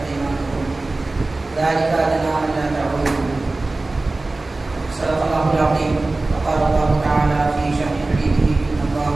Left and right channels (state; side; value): quieter; left; 3.2 dB